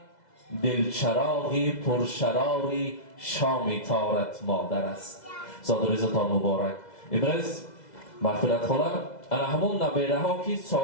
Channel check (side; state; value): right; late; 2.0 ms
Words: دلچراغی پرشراری شام تارت مادر است. زادروزتان مبارک. امروز مغفرت خواهم انا همون نبیره ها که